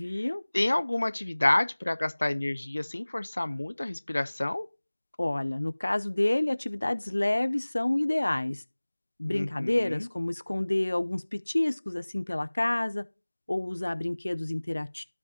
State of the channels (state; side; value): inverted; both; correlation -1.00